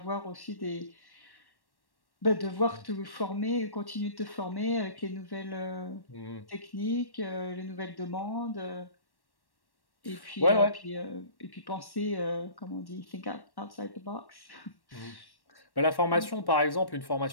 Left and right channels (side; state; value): right; late; 1.1 ms